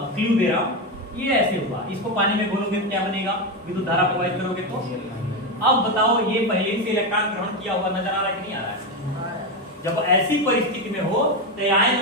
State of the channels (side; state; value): both; normal; correlation 0.12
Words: क्लू दे रहा हूं, ये ऐसे हुआ। इसको पानी में घोलोगे तो क्या बनेगा? विद्युत धारा प्रवाहित करोगे तो। अब बताओ ये पहले से इलेक्ट्रॉन ग्रहण किया हुआ नजर आ रहा है कि नहीं आ रहा है? जब ऐसी परिस्थिति में हो तो